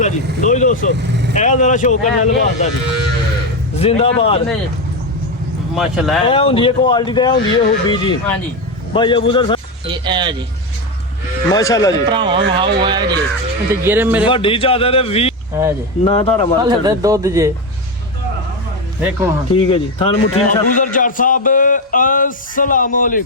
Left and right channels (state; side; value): normal; both; correlation 0.12